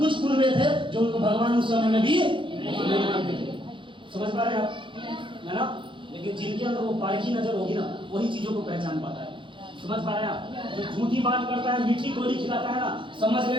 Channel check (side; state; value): left; late; 0.24 ms